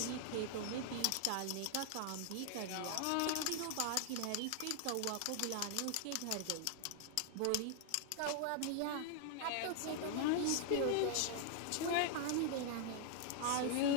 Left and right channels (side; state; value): both; different; correlation 0.00